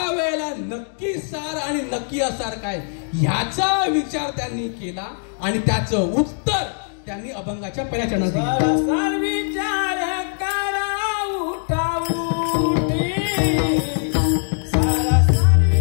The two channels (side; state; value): right; silent; 64 dB below the other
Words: नक्की सार आणि नक्की असार काय ह्याचा विचार त्यांनी केला आणि त्याचं उत्तर त्यांनी अभंगाच्या पहिल्या चरणात दिलं. सार विचार करा उठाऊठी, सारा सार